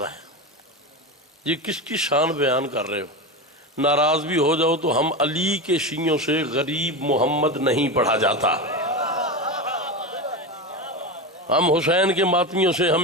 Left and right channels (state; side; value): normal; both; correlation 0.20